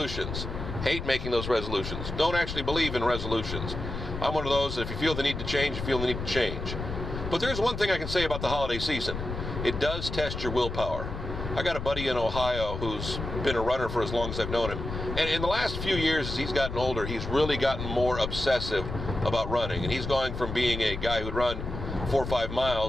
Hate making those resolutions. Don't actually believe in resolutions. I'm one of those that if you feel the need to change, you feel the need to change. But there's one thing I can say about the holiday season. It does test your willpower. I got a buddy in Ohio who's been a runner for as long as I've known him. And in the last few years, as he's gotten older, he's really gotten more obsessive about running. And he's going from being a guy who'd run 4 or 5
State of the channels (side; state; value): left; noise; rumble, 6 dB below the sound